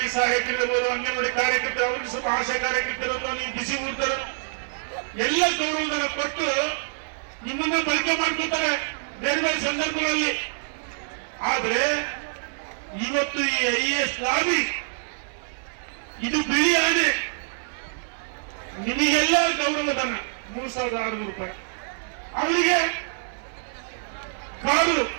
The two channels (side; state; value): left; silent; 58 dB below the other